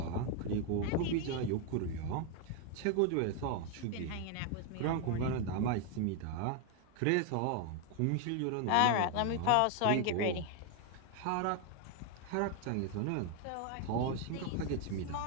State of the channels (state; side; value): different; both; correlation 0.01